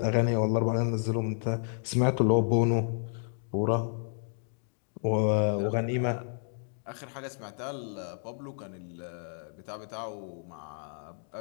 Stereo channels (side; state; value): right; silent; 57 dB below the other